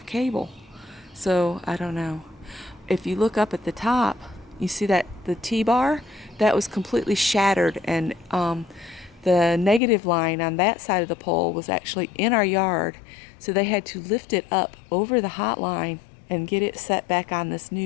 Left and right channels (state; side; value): drops out; right; at 9.8 s